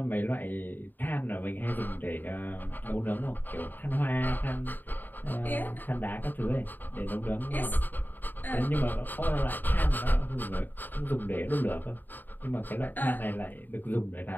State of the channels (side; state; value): right; late; 0.089 ms